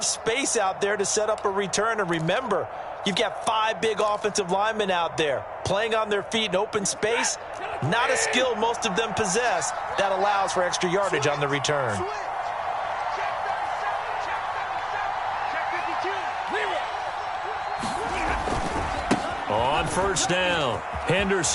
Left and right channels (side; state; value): both; identical; correlation 1.00